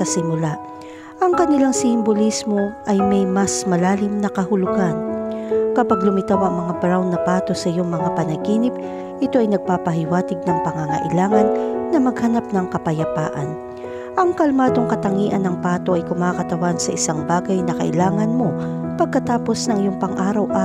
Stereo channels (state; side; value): identical; both; correlation 1.00